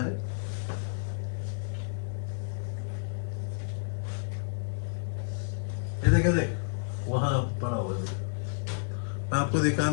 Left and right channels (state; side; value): silent; right; digital silence